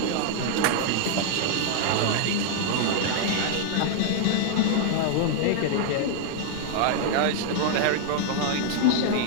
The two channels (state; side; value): different; both; correlation -0.01